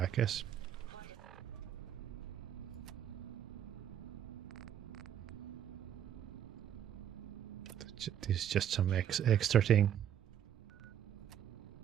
guess. This is just some extra thing.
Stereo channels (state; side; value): quieter; left; 10.1 dB